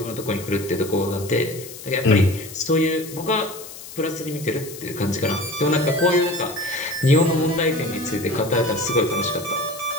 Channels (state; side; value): noise; left; hiss, 14 dB below the sound